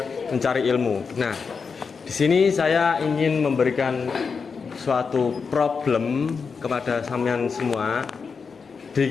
mencari ilmu. Nah, di sini saya ingin memberikan suatu problem kepada sampean semua di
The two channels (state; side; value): quieter; right; 5.4 dB